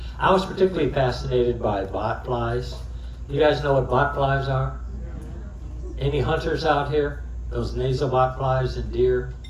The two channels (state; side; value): identical; both; correlation 1.00